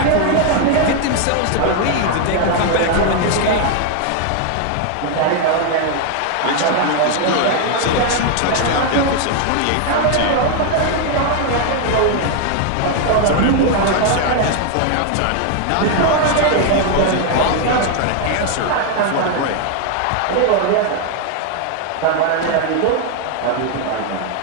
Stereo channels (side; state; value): both; different; correlation 0.00